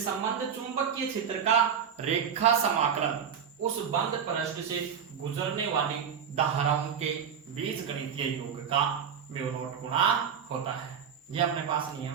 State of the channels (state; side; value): quieter; left; 7.6 dB